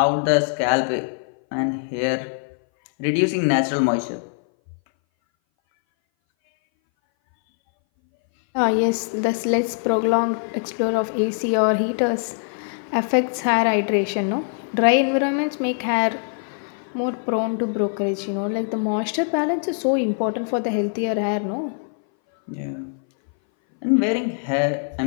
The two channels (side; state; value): right; silent; 60 dB below the other